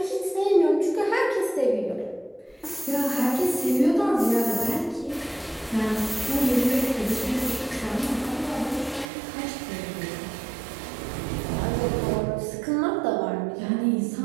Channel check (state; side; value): drops out; left; at 9.1 s